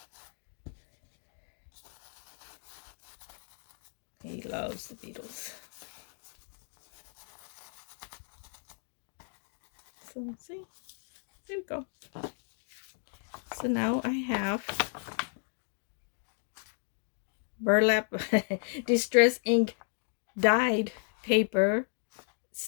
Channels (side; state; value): right; silent; 55 dB below the other